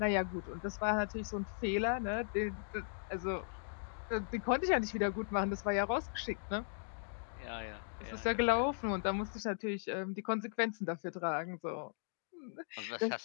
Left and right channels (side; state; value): right; silent; digital silence